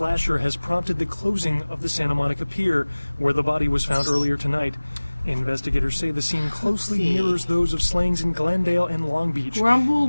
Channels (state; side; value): inverted; both; correlation -1.00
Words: has prompted the closing of the Santa Monica Pier, where the body was found earlier tonight. Investigators say the scene closely mirrors those of slayings in Glendale and Long Beach. Grumble,